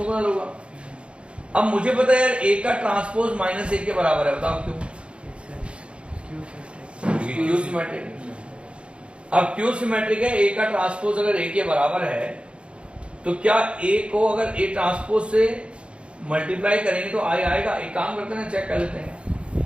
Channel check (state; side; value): late; left; 0.058 ms